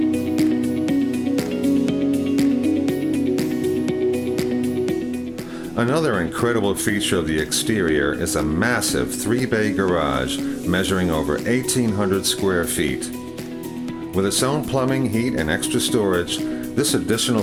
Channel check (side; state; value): both; identical; correlation 1.00